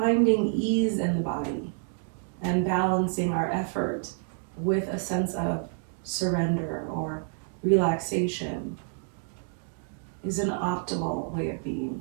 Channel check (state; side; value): silent; left; 59 dB below the other